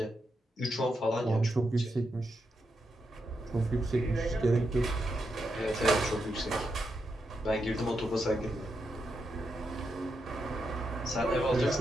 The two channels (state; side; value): normal; both; correlation 0.84